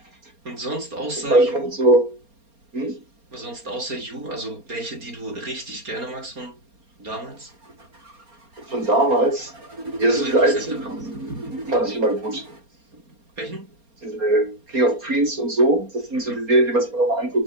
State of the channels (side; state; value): left; late; 4.3 ms